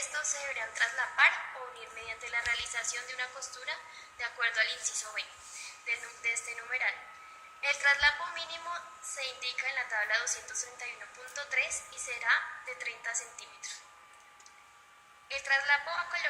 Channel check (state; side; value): identical; both; correlation 1.00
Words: se deberán traslapar o unir mediante la realización de una costura de acuerdo al inciso B de este numeral. El traslapo mínimo se indica en la tabla 231.3 y será de 30 centímetros. El traslapo a